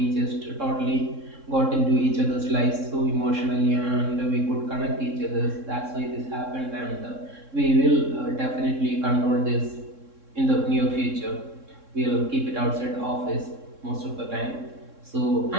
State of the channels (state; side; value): late; left; 3.6 ms